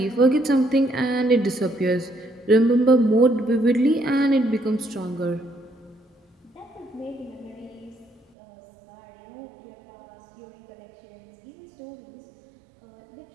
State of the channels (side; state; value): left; drops out; at 8.2 s